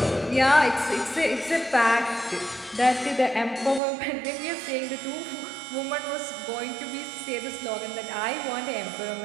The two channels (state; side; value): drops out; left; at 3.8 s